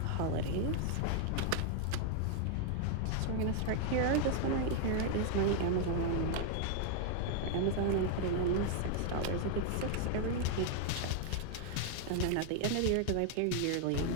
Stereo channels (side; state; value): both; different; correlation 0.00